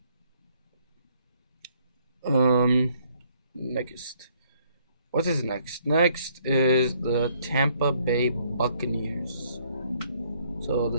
Next. What is next? Next is the Tampa Bay Buccaneers. So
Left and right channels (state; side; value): inverted; both; correlation -0.66